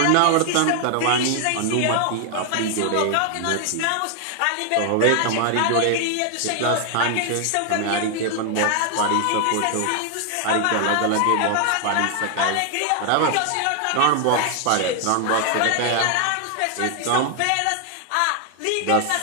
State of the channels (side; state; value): both; different; correlation 0.00